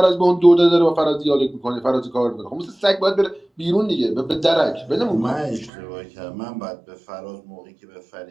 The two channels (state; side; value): drops out; left; at 5.7 s